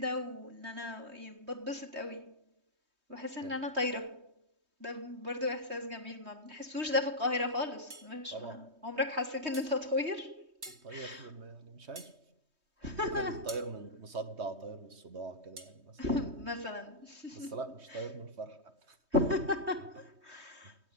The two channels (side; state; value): left; late; 3.2 ms